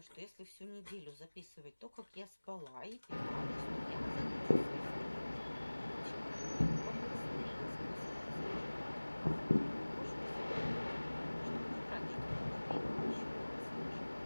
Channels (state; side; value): inverted; both; correlation -1.00